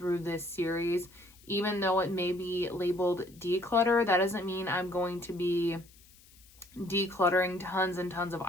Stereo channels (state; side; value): noise; left; hiss, 26 dB below the sound